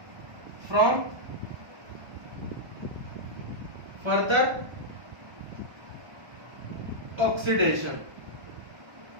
from further oxidation।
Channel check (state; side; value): late; left; 1.2 ms